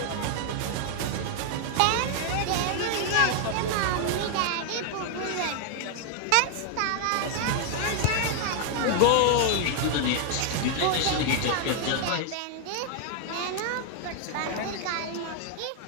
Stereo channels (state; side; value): different; both; correlation 0.00